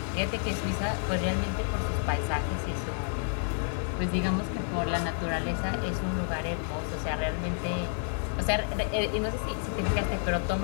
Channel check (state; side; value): silent; right; 58 dB below the other